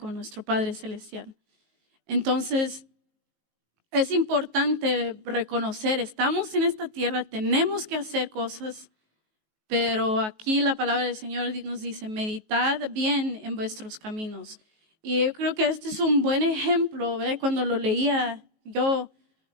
nuestro Padre Celestial. Entonces, es importante reconocer, estamos en esta tierra, tenemos que hacer cosas, pero aquí la palabra del Señor nos dice, meditad bien en vuestros caminos. Y yo creo que este es un buen ejemplo, ¿verdad? Cuando lo leía yo,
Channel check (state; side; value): late; left; 19 ms